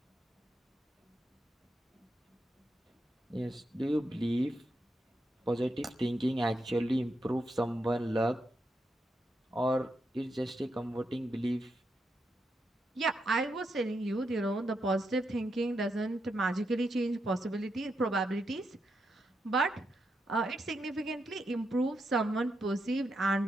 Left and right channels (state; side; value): normal; both; correlation 0.83